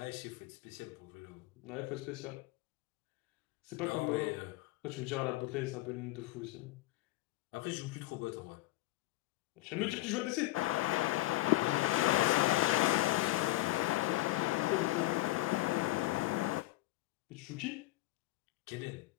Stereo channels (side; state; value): right; quieter; 17.9 dB